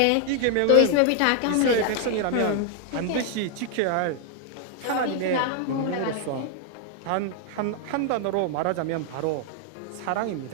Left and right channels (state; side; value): different; both; correlation 0.00